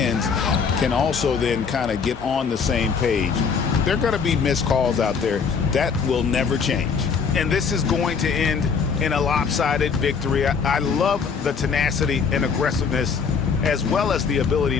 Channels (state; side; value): quieter; right; 5.8 dB